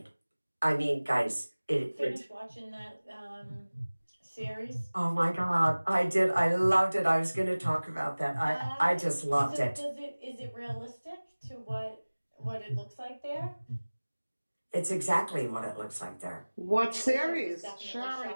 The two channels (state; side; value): inverted; both; correlation -1.00